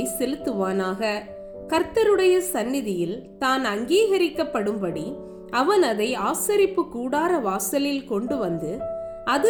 செலுத்துவானாக. கர்த்தருடைய சந்நிதியில் தான் அங்கீகரிக்கப்படும்படி அவன் அதை ஆசரிப்பு கூடார வாசலில் கொண்டு வந்து,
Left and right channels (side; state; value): both; identical; correlation 1.00